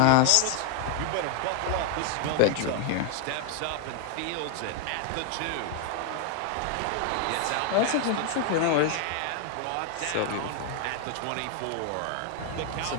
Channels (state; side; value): different; both; correlation 0.01